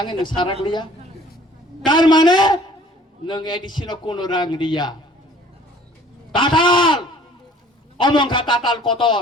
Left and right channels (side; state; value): both; normal; correlation 0.53